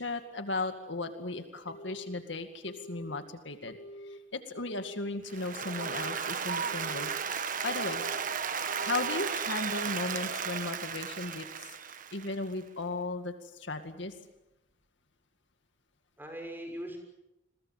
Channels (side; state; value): both; normal; correlation -0.06